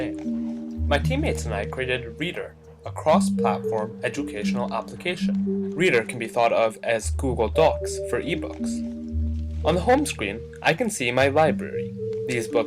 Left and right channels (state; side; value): identical; both; correlation 1.00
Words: My teammates and I created Reader, a cross-platform educational application. Reader can be thought of as Google Docs for ebooks. On the home screen, I can see my library. These